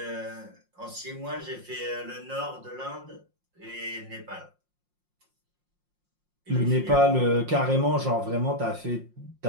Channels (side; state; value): left; late; 5.6 ms